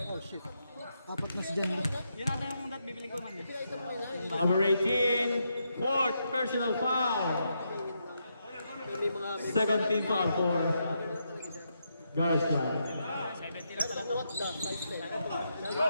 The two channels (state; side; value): inverted; both; correlation -0.81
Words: Oh shit. Apat na si Jan. Yun natin yung dat bibili ko man eh. Number 18. Fourth personal foul. Second team foul for Garza. 70 lang pala. What the?